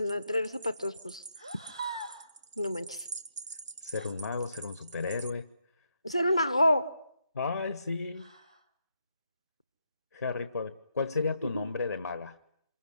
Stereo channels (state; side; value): inverted; both; correlation -0.80